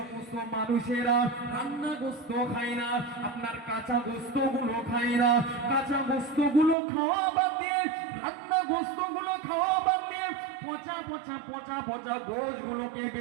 মানুষেরা রান্না গোস্ত খায় না, আপনার কাঁচা গোস্ত গুলো খায় না, কাঁচা গোস্ত গুলো খাওয়া বাদ দিয়ে, রান্না গোস্ত গুলো খাওয়া বাদ দিয়ে পচা পচা পচা পচা গোশ গুলোকে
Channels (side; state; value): left; drops out; at 6.8 s